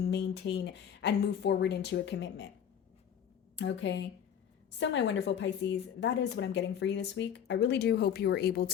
maintain and move forward into a commitment? Okay. So my wonderful Pisces, that is what I'm getting for you this week. I really do hope you were able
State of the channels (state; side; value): quieter; right; 8.7 dB